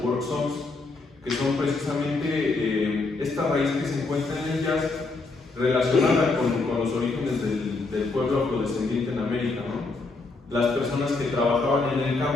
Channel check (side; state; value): right; quieter; 3.7 dB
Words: work songs, que son precisamente esta raíz que se encuentra en el jazz relacionada con los orígenes del pueblo afrodescendiente en América, ¿no? Las personas que trabajaban en el